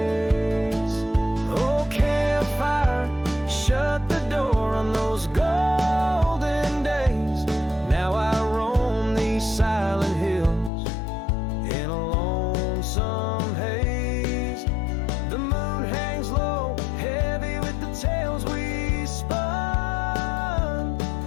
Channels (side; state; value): right; drops out; at 10.7 s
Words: Oh campfire, shut the door on those golden days. Now I roam these silent hills in a lonesome haze. The moon hangs low, heavy with the tales we spun.